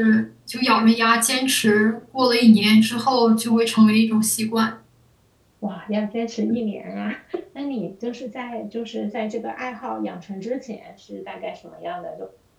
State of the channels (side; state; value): both; identical; correlation 1.00